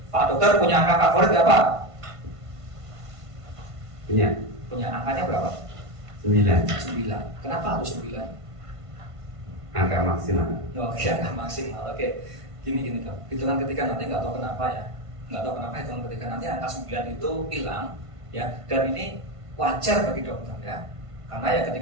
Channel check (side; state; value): left; late; 1.5 ms